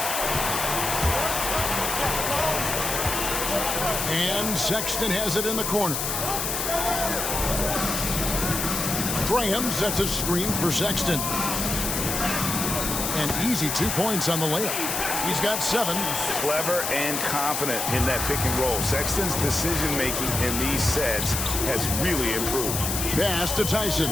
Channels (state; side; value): noise; left; hiss, 1 dB below the sound